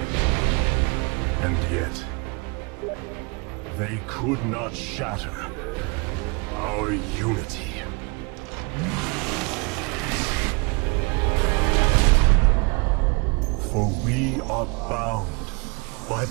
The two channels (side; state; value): left; quieter; 29.6 dB